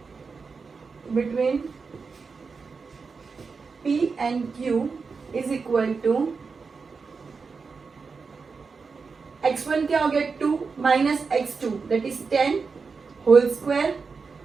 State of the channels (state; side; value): quieter; left; 4.9 dB